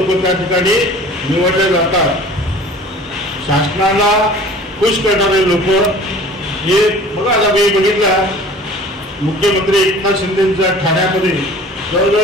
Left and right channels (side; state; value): both; normal; correlation 0.45